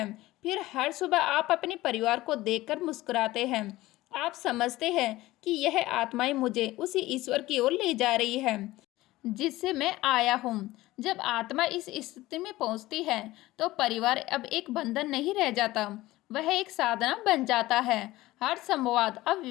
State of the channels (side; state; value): right; quieter; 17.7 dB